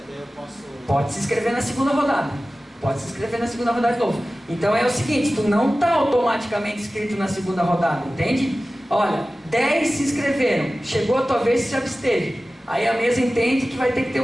posso... Pode se inscrever na segunda rodada. Pode se inscrever na segunda rodada de novo. Então é o seguinte, tu não está automaticamente inscrito na segunda rodada, entende? Olha, 10 se inscreveram, chegou a tua vez e se absteve. Aí a mesa entende que vai ter que ter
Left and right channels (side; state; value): both; normal; correlation 0.96